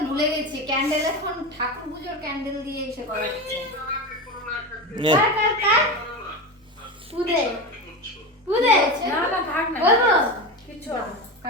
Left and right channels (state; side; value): normal; both; correlation 0.21